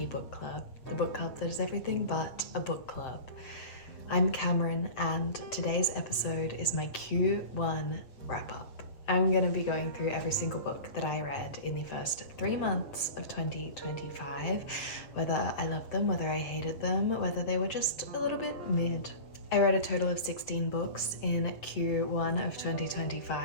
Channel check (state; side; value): late; right; 7.7 ms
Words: Book Club, the book club that is everything but a book club. I'm Cameron and today's episode is my Q1 wrap-up. I'm going to be going through every single book that I read in the first 3 months of 2025, whether I loved them, whether I hated them, whether they were just a little bit mid. I read a total of 16 books in Q1 of